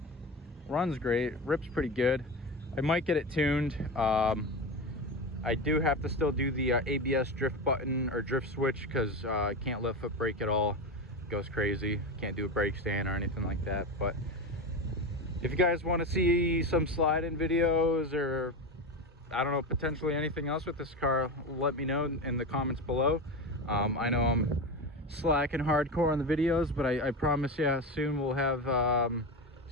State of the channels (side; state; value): both; normal; correlation 0.21